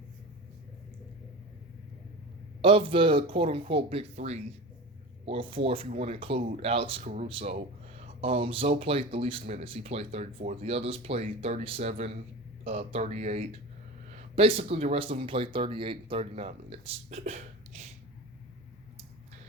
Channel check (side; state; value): both; normal; correlation 0.30